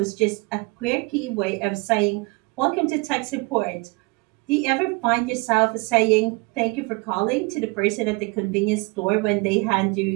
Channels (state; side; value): quieter; left; 27.7 dB